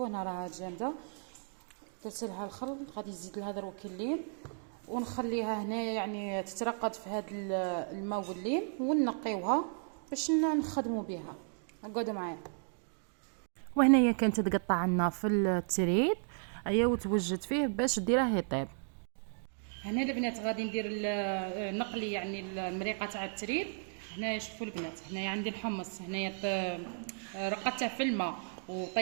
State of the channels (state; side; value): silent; left; 55 dB below the other